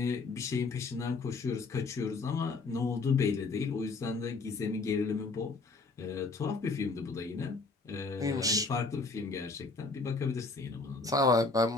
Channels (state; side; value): quieter; right; 3.8 dB